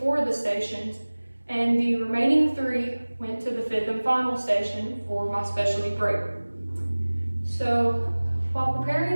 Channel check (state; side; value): inverted; both; correlation -1.00